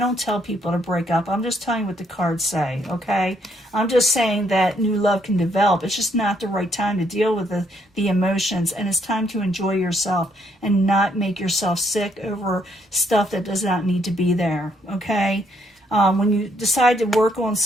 tell people to break up. I'm just telling you what the cards say, okay? I'm just saying that new love can develop. It's just not the right time to deal with the emotions. And it's time to enjoy yourself and not make yourself sick over stuff that does not need to be there, okay? When you decide to work on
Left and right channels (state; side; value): normal; both; correlation 0.71